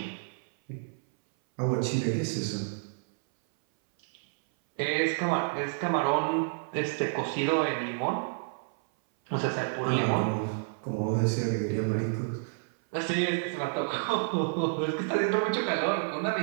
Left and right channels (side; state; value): left; silent; 58 dB below the other